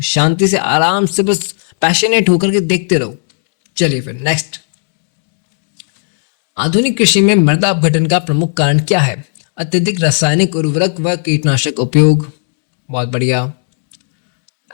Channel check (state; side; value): silent; right; digital silence